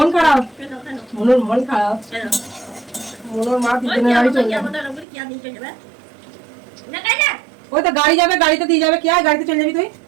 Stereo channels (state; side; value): drops out; left; at 5.1 s